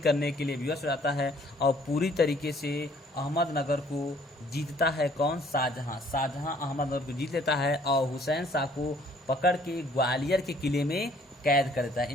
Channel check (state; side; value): normal; both; correlation 0.60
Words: के लिए विवश हो जाता है और पूरी तरीके से अहमदनगर को जीतता है। कौन, शाहजहां अहमदनगर को जीत लेता है और हुसैन शाह को पकड़ के ग्वालियर के किले में कैद कर देता है।